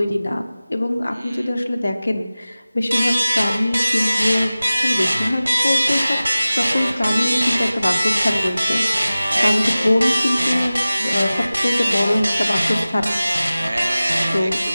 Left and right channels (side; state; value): both; inverted; correlation -0.97